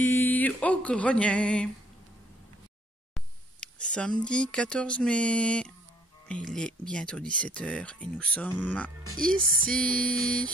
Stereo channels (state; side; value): normal; both; correlation 0.62